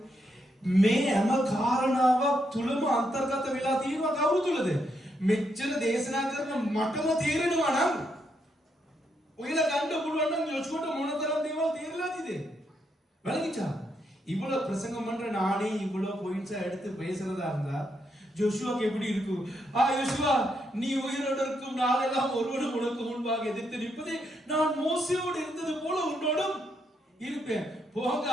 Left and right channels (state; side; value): normal; both; correlation 0.79